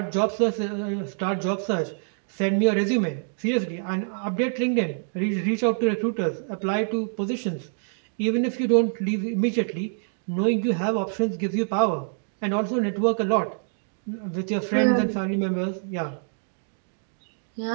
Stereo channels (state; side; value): silent; left; digital silence